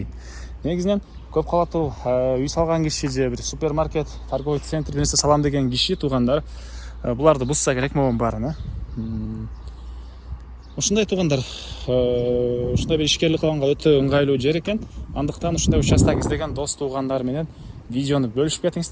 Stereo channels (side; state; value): both; identical; correlation 1.00